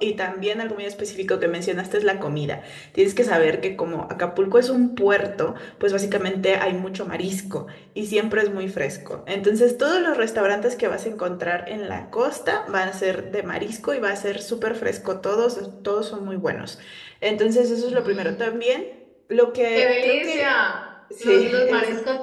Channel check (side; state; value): both; identical; correlation 1.00